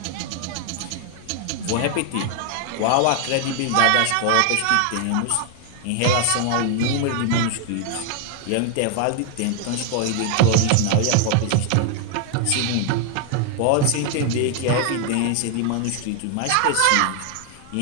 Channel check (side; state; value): both; different; correlation 0.00